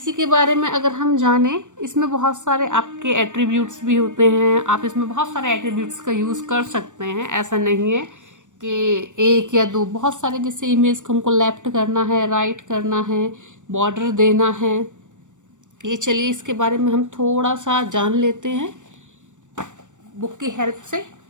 के बारे में अगर हम जानें, इसमें बहुत सारे आपके एट्रीब्यूट्स भी होते हैं, आप इसमें बहुत सारे एट्रीब्यूट्स का यूज़ कर सकते हैं। ऐसा नहीं है कि एक या दो, बहुत सारे। जैसे इमेज को हमको लेफ्ट करना है, राइट करना है, बॉर्डर देना है, ये चलिए इसके बारे में हम थोड़ा सा जान लेते हैं बुक की हेल्प से।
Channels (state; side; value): late; left; 0.85 ms